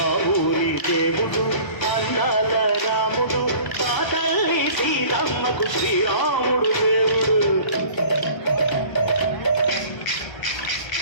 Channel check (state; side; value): late; right; 1.0 ms